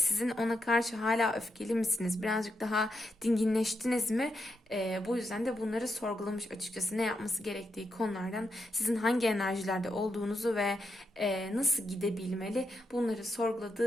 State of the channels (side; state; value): both; normal; correlation 0.83